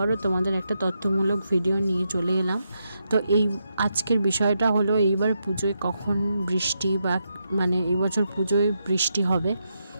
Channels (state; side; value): inverted; both; correlation -0.83